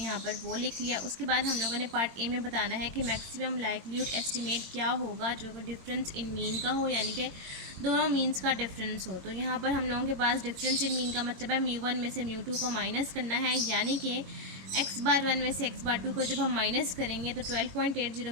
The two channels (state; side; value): late; left; 22 ms